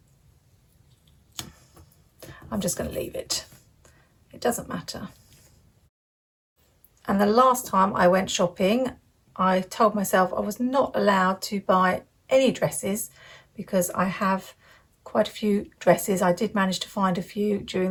I'm just going to leave it. It doesn't matter. And the last time I went shopping, I told myself I was not allowed to buy any dresses because I have quite a few dresses. I did manage to find a few during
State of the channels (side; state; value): both; identical; correlation 1.00